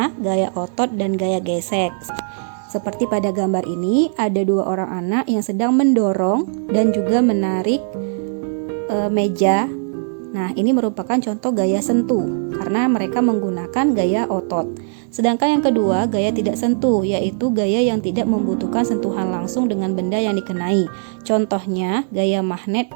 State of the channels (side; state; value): left; silent; 66 dB below the other